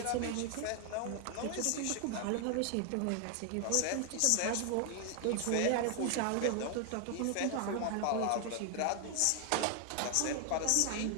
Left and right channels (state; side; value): different; both; correlation 0.00